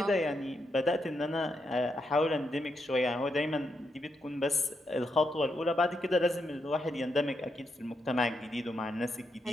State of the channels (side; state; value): both; normal; correlation 0.82